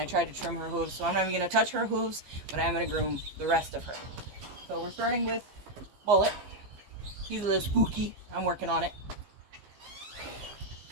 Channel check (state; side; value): late; left; 15 ms